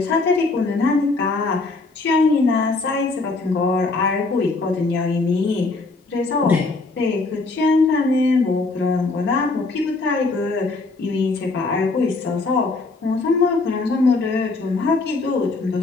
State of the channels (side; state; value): right; quieter; 3.6 dB